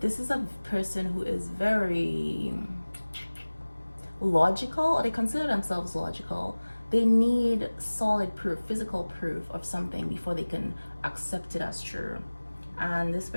is a person who is very logical, or they consider themselves logical. They need solid proof, physical proof of something before they can accept it as true. And this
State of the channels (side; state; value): both; inverted; correlation -1.00